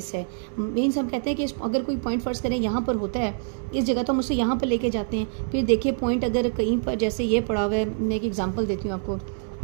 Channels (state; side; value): silent; left; digital silence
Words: है। मीन्स हम कहते हैं कि अगर कोई पॉइंट फर्स्ट करें यहाँ पर होता है इस जगह तो हम उसे यहाँ पर लेके जाते हैं। फिर देखिए पॉइंट अगर कहीं पर जैसे ये पड़ा हुआ है, मैं एक एग्जाम्पल देती हूँ आपको,